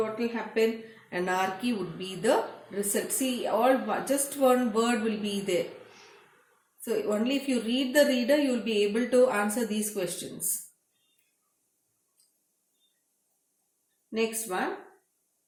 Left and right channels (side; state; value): both; identical; correlation 1.00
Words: will happen? Anarchy would be the result. See, just one word will be there. So only if you read the reader, you will be able to answer these questions. Next one.